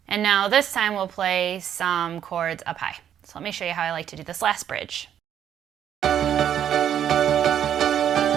And now this time we'll play some chords up high. So let me show you how I like to do this last bridge.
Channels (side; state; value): left; quieter; 9.7 dB